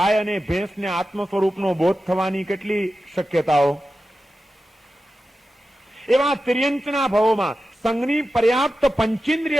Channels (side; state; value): both; normal; correlation 0.92